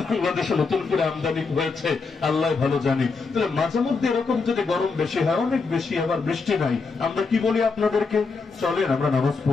নতুন করে আমদানি হয়েছে, আল্লাহ ভালো জানি। তাহলে মাঝে মধ্যে এরকম যদি গরম বেশি হয়, অনেক বেশি, আবার বৃষ্টি নাই, আমরা কি বলি আপনাদেরকে? চলেন আমরা নামাজ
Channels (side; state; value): right; quieter; 4.5 dB